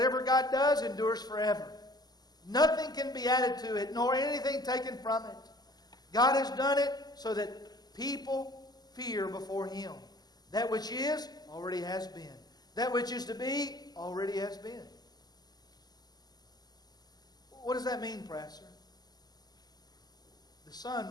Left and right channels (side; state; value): right; late; 0.20 ms